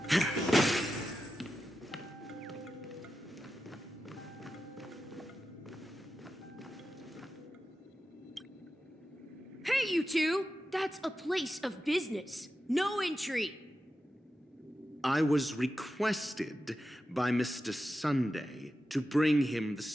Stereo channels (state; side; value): normal; both; correlation 0.91